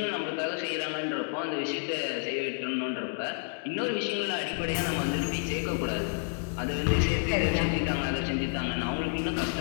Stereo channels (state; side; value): silent; right; 58 dB below the other